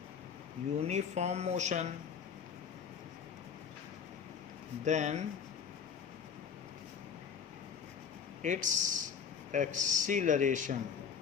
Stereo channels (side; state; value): right; quieter; 7.0 dB